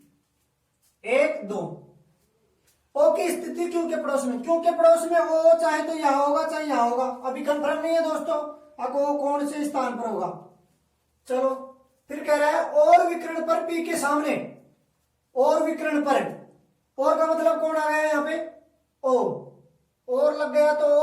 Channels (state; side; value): identical; both; correlation 1.00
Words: एक दो। ओ की स्थिति क्यों के पड़ोस में, क्यों के पड़ोस में ओ चाहे तो यहां होगा चाहे यहां होगा, अभी कंफर्म नहीं है दोस्तों अब वो कौन से स्थान पर होगा। चलो फिर कह रहा है और विकर्ण पर पी के सामने, और विकर्ण पर, और का मतलब कौन आ गया यहां पे, ओ, और लग गया तो